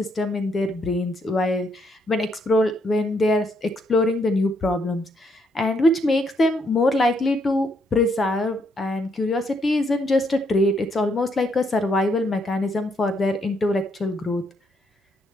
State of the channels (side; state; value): both; normal; correlation 0.73